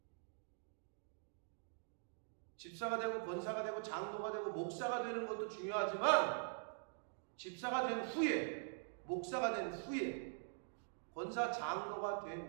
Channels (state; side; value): silent; left; digital silence